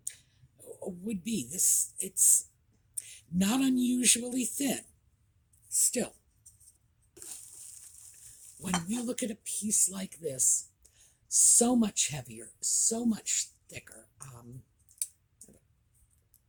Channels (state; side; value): identical; both; correlation 1.00